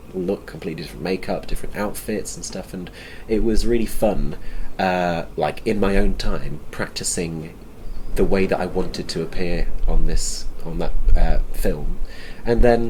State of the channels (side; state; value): both; identical; correlation 1.00